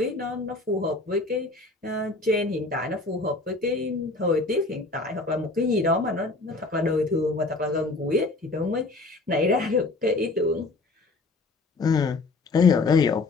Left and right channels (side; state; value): right; quieter; 3.3 dB